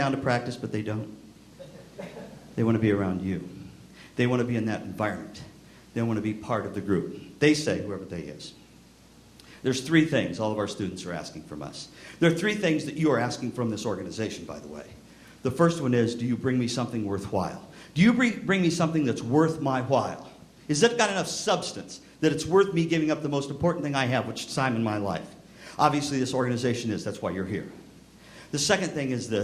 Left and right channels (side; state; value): both; identical; correlation 1.00